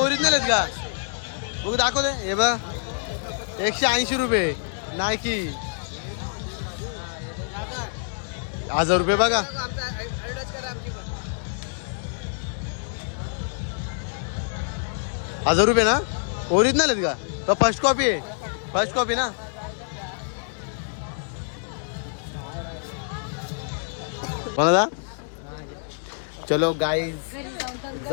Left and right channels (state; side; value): silent; right; digital silence